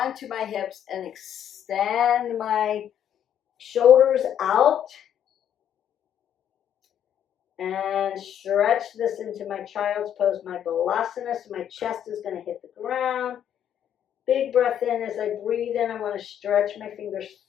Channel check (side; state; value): right; quieter; 9.7 dB